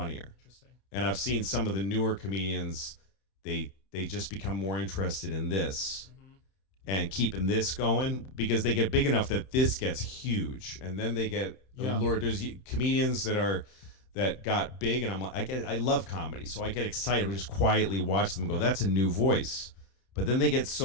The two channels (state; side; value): late; right; 31 ms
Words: Interesting. And I've seen some of the newer comedians. They just become more interested in this. And keeping this going because they get big enough that this gets huge, and then they get Lord. There's comedians that got big, and I'm like, I love comedy, so I get excited. We just quietly watch them go. That's a new voice, but then they get